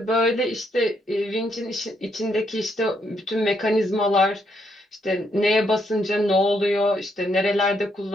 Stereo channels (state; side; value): normal; both; correlation 0.75